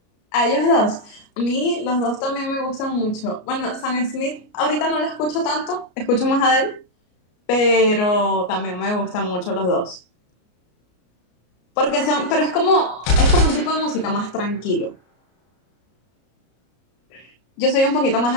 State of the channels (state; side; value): late; right; 33 ms